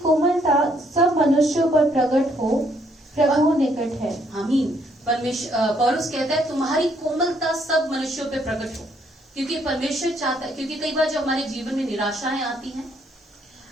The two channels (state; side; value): normal; both; correlation 0.69